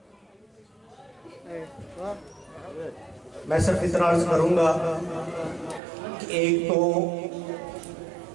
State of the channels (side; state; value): left; drops out; at 5.8 s